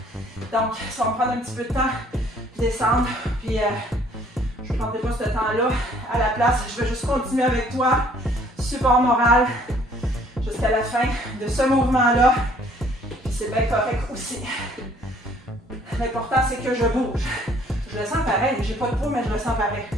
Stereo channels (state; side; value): normal; both; correlation 0.59